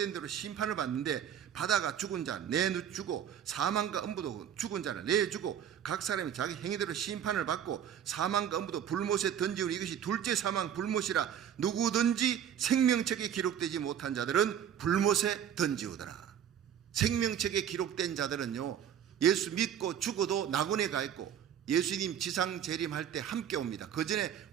대로 심판을 받는데, 바다가 죽은 자 내주고 사망과 음부도 죽은 자를 내주고 각 사람이 자기 행위대로 심판을 받고, 사망과 음부도 불못에 던지우니 이것이 둘째 사망 불못이라. 누구든지 생명책에 기록되지 못한 자들은 불못에 던지우더라. 생명책에 기록된 자들은요, 예수 믿고 죽어도 낙원에 가 있고, 예수님 지상 재림할 때 함께 옵니다. 그 전에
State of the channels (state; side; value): quieter; left; 9.3 dB